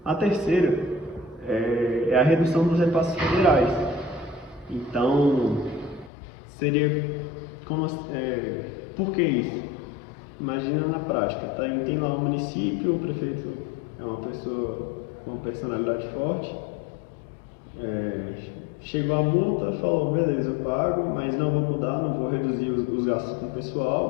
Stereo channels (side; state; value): right; drops out; at 6.1 s